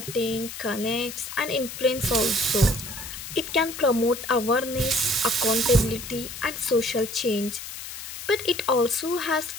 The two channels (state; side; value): noise; left; hiss, 10 dB below the sound